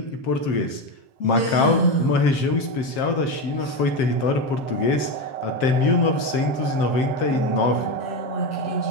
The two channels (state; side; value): late; right; 7.5 ms